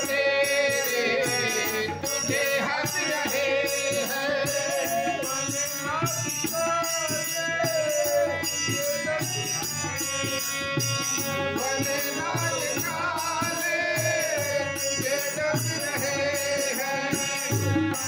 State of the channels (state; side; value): identical; both; correlation 1.00